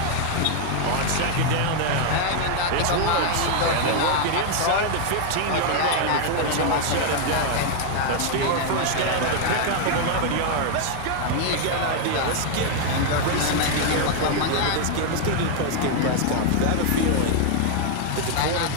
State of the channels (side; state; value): both; different; correlation 0.00